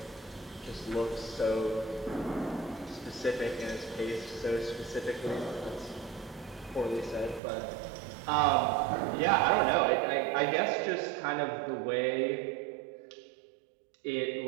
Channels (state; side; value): drops out; left; at 7.4 s